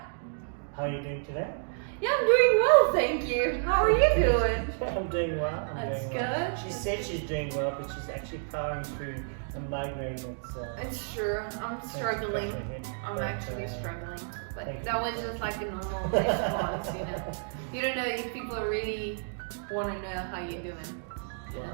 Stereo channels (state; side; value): silent; left; digital silence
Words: How are you doing today? Yeah, I'm doing well, thank you. How are you doing? I'm doing well. That's doing well. good. She said she's doing well, but she's actually powering through a migraine that's... It's true. I'm struggling. I'm actually struggling. But that was just like a normal response, you know. You don't know if people really want to know how you're doing.